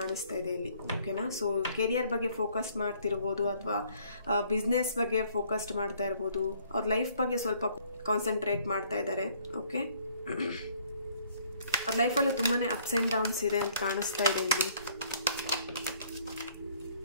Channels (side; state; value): both; inverted; correlation -0.62